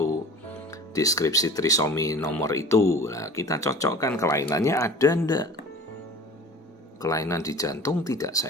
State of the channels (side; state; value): both; normal; correlation 0.41